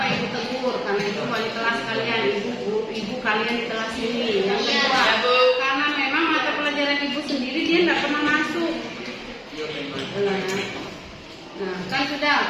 kalian di kelas ini. Yang kedua, karena memang mata pelajaran ibu sendiri dia tidak pernah masuk. Nah, kan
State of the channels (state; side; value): identical; both; correlation 1.00